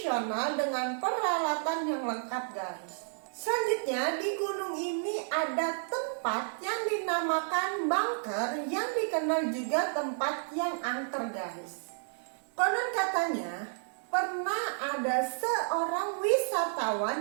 dengan peralatan yang lengkap guys. Selanjutnya di gunung ini ada tempat yang dinamakan bunker yang dikenal juga tempat yang angker guys. Konon katanya pernah ada seorang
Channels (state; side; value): silent; left; digital silence